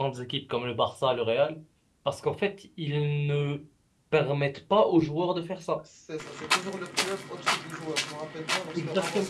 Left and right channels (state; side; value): identical; both; correlation 1.00